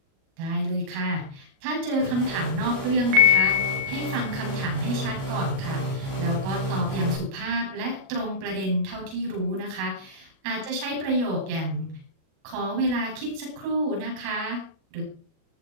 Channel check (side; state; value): left; late; 37 ms